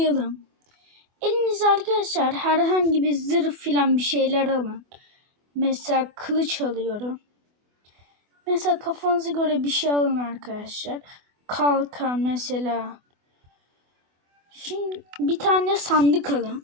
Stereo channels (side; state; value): left; late; 24 ms